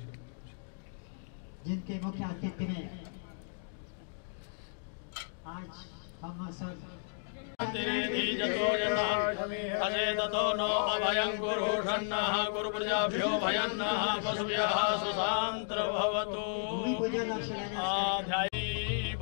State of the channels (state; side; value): silent; right; digital silence